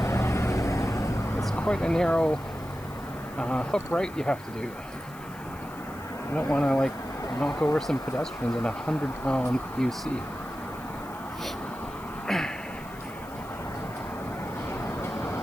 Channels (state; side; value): noise; left; hiss, 21 dB below the sound